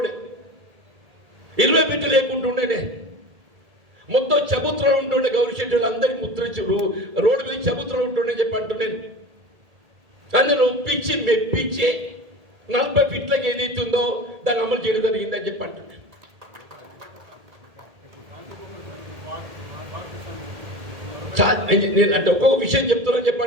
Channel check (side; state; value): left; late; 1.8 ms